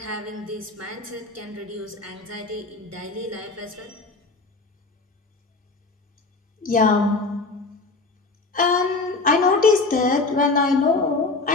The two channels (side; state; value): right; quieter; 3.6 dB